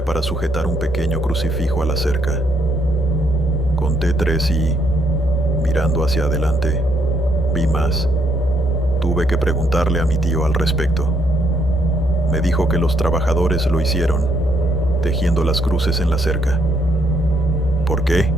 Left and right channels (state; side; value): normal; both; correlation 0.73